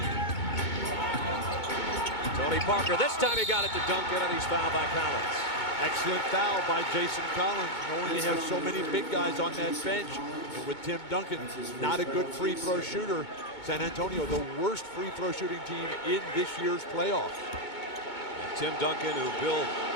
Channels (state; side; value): late; right; 2.2 ms